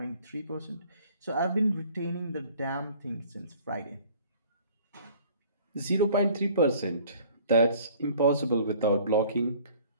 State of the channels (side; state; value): both; inverted; correlation -0.53